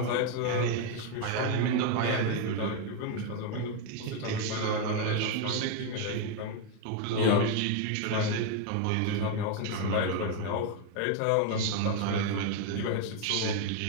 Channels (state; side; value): different; both; correlation 0.01